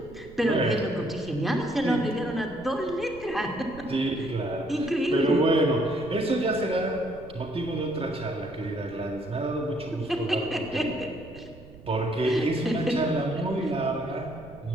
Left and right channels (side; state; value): right; noise; rumble, 18 dB below the sound